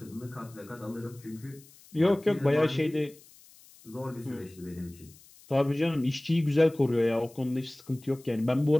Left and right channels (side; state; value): left; noise; hiss, 25 dB below the sound